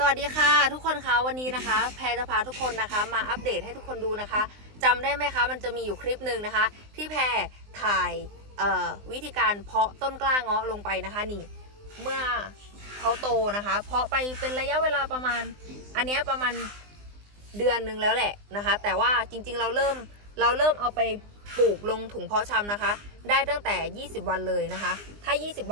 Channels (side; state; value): left; late; 20 ms